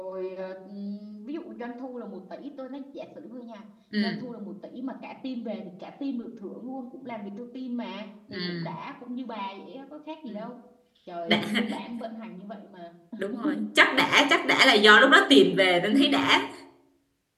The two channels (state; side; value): identical; both; correlation 1.00